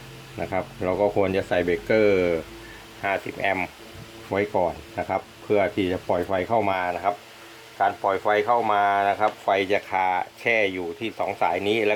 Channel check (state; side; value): identical; both; correlation 1.00